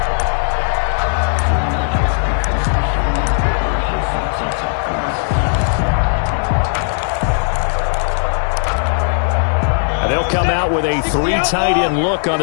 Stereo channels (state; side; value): silent; right; digital silence